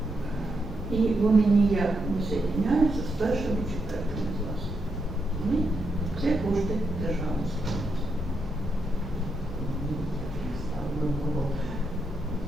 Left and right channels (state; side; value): normal; both; correlation 0.81